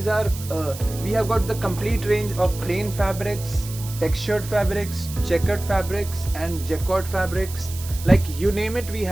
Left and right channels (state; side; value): noise; right; hiss, 13 dB below the sound